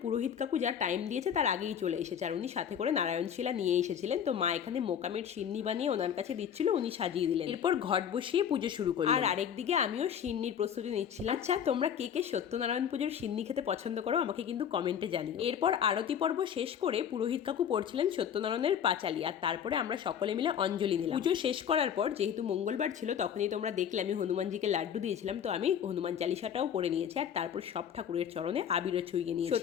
পুরোহিত কাকু যা টাইম দিয়েছে তার আগেই চলে এসেছে, আর উনি সাথে করে নারায়ণ শিলা নিয়ে এসেছিলেন। তো মা এখানে মোকামের সিন্নি বানিয়ে ওনার কাছে দিচ্ছিল, উনি সাজিয়ে দিলেন। এরপর ঘট বসিয়ে পুজো শুরু করলেন। আর আরেকদিকে আমিও সিন্নির প্রস্তুতি নিচ্ছিলাম। আচ্ছা, তোমরা কে কে সত্যনারায়ণ পুজোর সিন্নি খেতে পছন্দ করো আমাকে কিন্তু কমেন্টে জানিও। এরপর আরতি পর্ব শেষ করে পুরোহিত কাকু পড়ছিলেন সত্যনারায়ণের পাঁচালি, আর তারপরে আমরা সকলে মিলে অঞ্জলি নিলাম। পুজো শেষ করার পর যেহেতু মঙ্গলবার ছিল, তখনই তোমরা দেখলে আমি হনুমানজিকে লাড্ডু দিয়েছিলাম, তো আমি হনুমান চালিসাটাও পড়ে নিয়েছি, আর তারপর সব ঠাকুরের চরণে আবিরও ছুঁয়ে নিয়েছি।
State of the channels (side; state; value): right; quieter; 8.6 dB